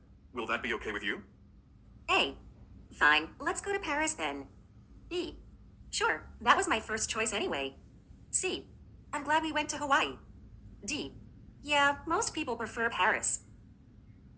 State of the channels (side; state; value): both; identical; correlation 1.00